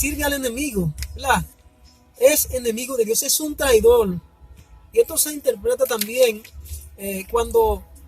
al enemigo, ¿verdad? Es enemigo de Dios, es un traidor. Y esto se interpreta también cuando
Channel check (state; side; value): identical; both; correlation 1.00